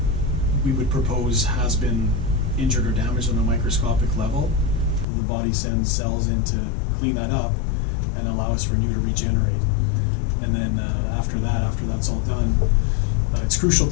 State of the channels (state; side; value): drops out; right; at 5.1 s